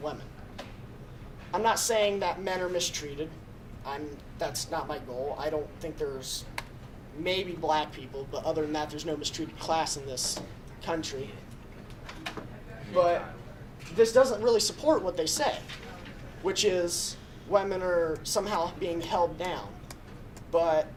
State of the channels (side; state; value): both; identical; correlation 1.00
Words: I'm not saying that men are mistreated. That's not my goal. I don't think there's maybe black people, but other than that, there's no mistreated class in this country. But this doesn't really support what they say, which is women are somehow being held down. But,